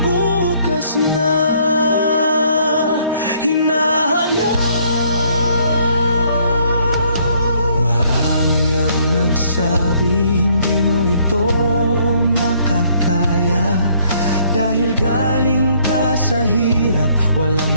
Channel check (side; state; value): both; inverted; correlation -0.65